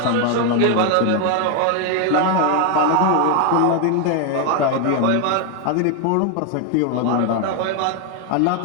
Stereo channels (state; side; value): different; both; correlation 0.01